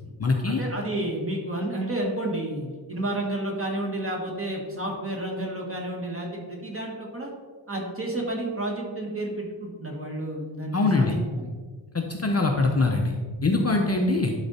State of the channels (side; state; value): both; normal; correlation 0.46